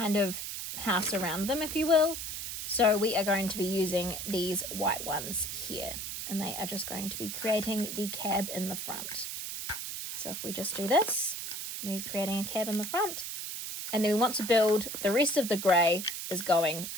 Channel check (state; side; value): noise; right; hiss, 6 dB below the sound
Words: of house around them, if you will. So we are going to be using these white ones here. And they are just going to be creating the cab in the front. So if we just do this, we're creating a cab in the front. And then we want to build the rest of the grey is going